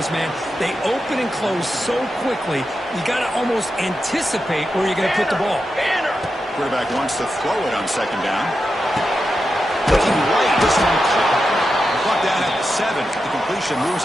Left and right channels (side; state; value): both; normal; correlation 0.89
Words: man. They open and close so quickly. You got to almost anticipate where you're going to put the ball. Quarterback wants to throw it on 2nd down. Looking right, this one caught. Brought down at the 7. The completion moves